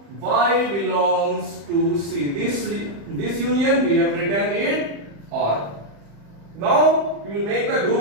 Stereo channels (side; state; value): left; late; 35 ms